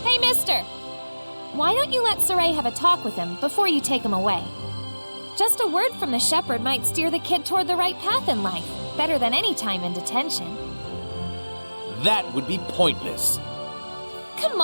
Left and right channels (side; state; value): both; inverted; correlation -1.00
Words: Hey, mister! Why don't you let Saray have a talk with him before you take him away? Just a word from the shepherd might steer the kid toward the right path in life, better than any time in detention. That would be pointless. Come